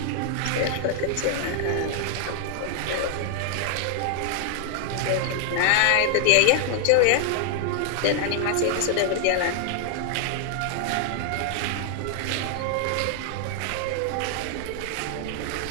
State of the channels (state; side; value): different; both; correlation 0.00